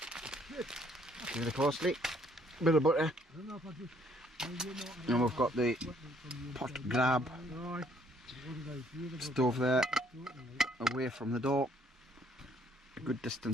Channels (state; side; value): normal; both; correlation 0.64